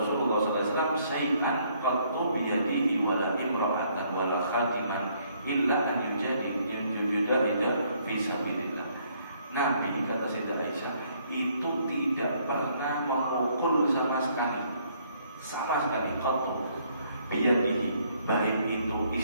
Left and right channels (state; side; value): inverted; both; correlation -0.67